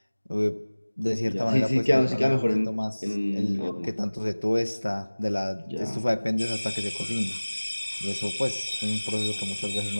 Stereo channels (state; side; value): inverted; both; correlation -1.00